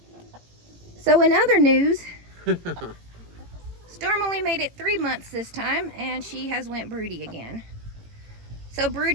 So in other news, Storm only made it 3 months this time, and she has went broody again. So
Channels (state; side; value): late; left; 18 ms